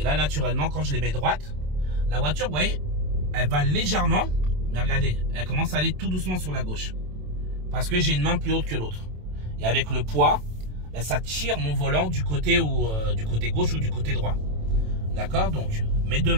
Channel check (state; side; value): late; left; 27 ms